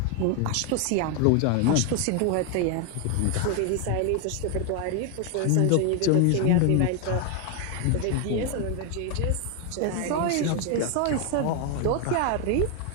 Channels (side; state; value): both; different; correlation 0.01